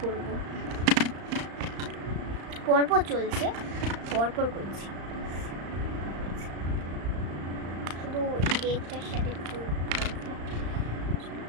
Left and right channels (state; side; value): late; left; 35 ms